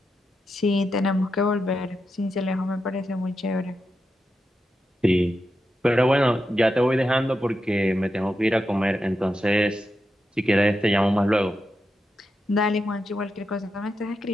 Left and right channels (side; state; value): both; normal; correlation 0.87